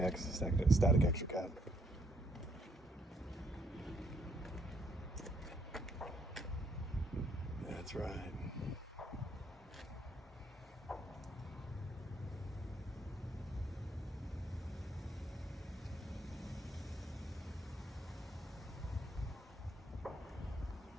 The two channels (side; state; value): both; normal; correlation 0.71